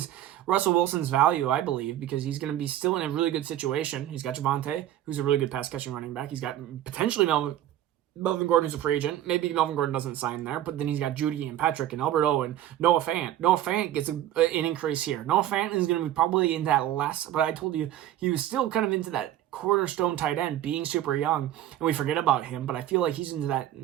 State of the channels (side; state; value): left; quieter; 12.5 dB